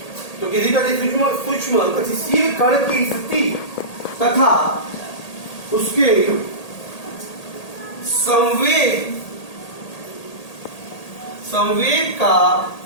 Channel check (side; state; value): right; late; 1.8 ms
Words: तो किसी अति सूक्ष्म गतिशील कण की स्थिति तथा उसके संवेग का